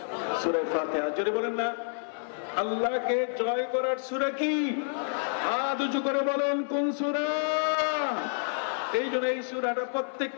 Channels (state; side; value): silent; right; 59 dB below the other